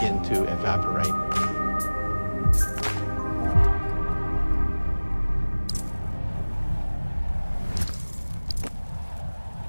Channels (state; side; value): inverted; both; correlation -1.00